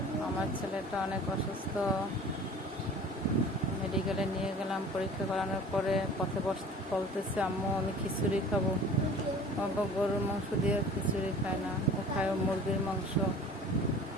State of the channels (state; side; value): normal; both; correlation 0.45